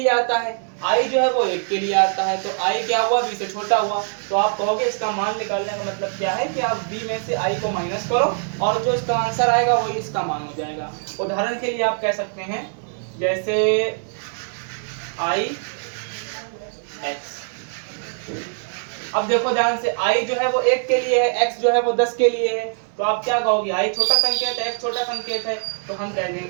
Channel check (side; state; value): left; silent; 62 dB below the other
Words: आता है, I जो है वो 1 के लिए आता है, तो I क्या हुआ, V से छोटा हुआ। तो आप कहोगे इसका मान निकालने का मतलब क्या है कि आप V में से I को माइनस करो और जो इसका आंसर आएगा वही इसका मान हो जाएगा। उदाहरण के लिए आप कह सकते हैं, जैसे I X, अब देखो ध्यान से, I जो है वो 1 के लिए है, X जो है वो 10 के लिए है, तो आप क्या कहोगे, I छोटा संकेत है, X छोटा संकेत है, तो हम कह